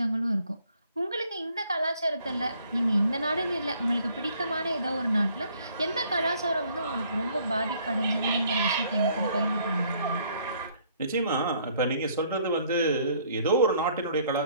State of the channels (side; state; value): both; inverted; correlation -0.63